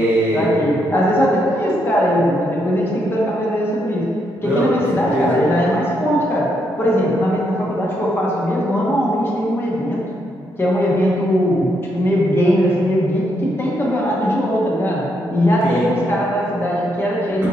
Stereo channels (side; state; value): both; normal; correlation 0.77